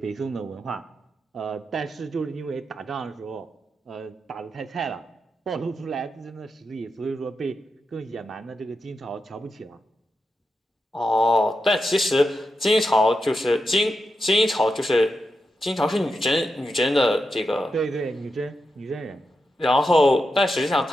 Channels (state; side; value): normal; both; correlation 0.87